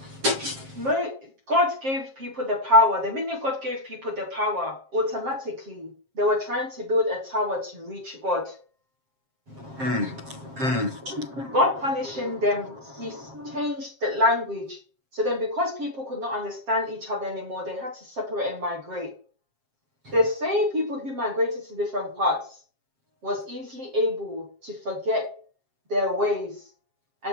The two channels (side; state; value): left; late; 7.5 ms